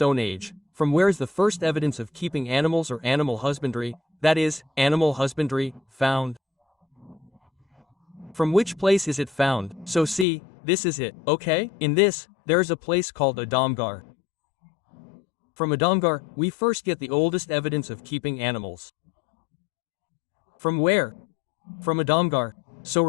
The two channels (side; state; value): right; drops out; at 10.2 s